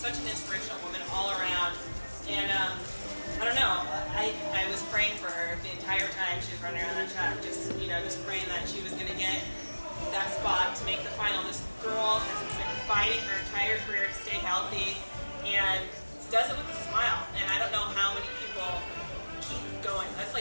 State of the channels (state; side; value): inverted; both; correlation -1.00